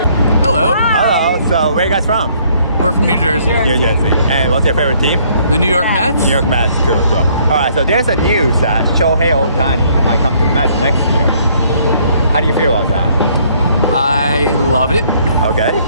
Hello. Hello. So where are you guys from? We're from New Jersey. New Jersey. And what's your favorite team? The New York Mets. New York Mets. Cool. So, all right. So there's a news that Shohei Ohtani might come to the Mets next year. How do you feel about that? I love it. Okay.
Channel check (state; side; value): inverted; both; correlation -0.64